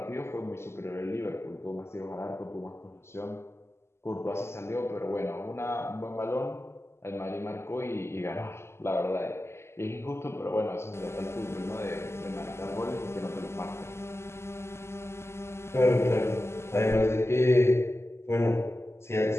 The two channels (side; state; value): right; late; 0.13 ms